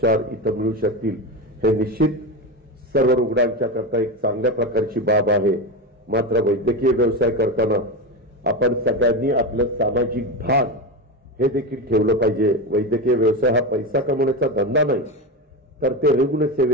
इथं मिळू शकतील हे निश्चित सर्व रुग्णांच्या करता एक चांगल्या प्रकारची बाब आहे. मात्र वैद्यकीय व्यवसाय करताना आपण सगळ्यांनी आपलं सामाजिक भान हे देखील ठेवलं पाहिजे. वैद्यकीय व्यवसाय हा पैसा कमवण्याचा धंदा नाही, तर ते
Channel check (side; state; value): both; normal; correlation 0.18